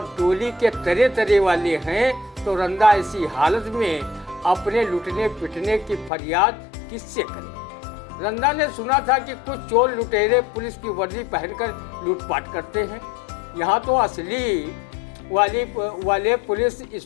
डोली के तरह तरह वाले हैं तो रंदा ऐसी हालत में अपने लुटने पिटने की फरियाद किससे करें। रंदा ने सुना था कि कुछ चोर लुटेरे पुलिस की वर्दी पहनकर लूटपाट करते हैं। यहाँ तो असली वाले पुलिस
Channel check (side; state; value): right; drops out; at 6.1 s